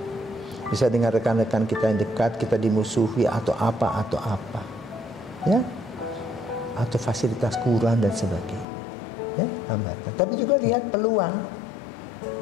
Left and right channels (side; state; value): right; drops out; at 8.7 s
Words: Bisa dengan rekan-rekan kita yang dekat, kita dimusuhi atau apa, ya, atau fasilitas kurang dan sebagainya, ya, hambatan. Tapi juga lihat peluang.